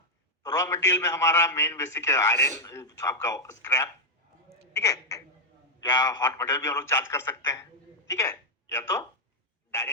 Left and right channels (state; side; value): normal; both; correlation 0.00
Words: तो रॉ मटेरियल में हमारा मेन बेसिक है आयरन, आपका स्क्रैप, ठीक है, या हॉट मटेरियल भी हम लोग चार्ज कर सकते हैं, ठीक है, या तो